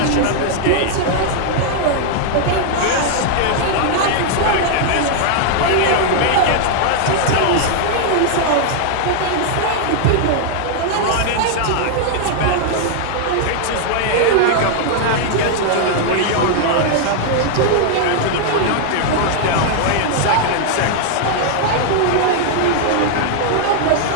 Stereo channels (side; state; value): both; different; correlation 0.00